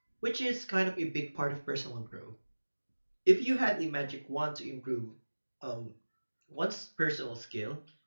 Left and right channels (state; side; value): inverted; both; correlation -1.00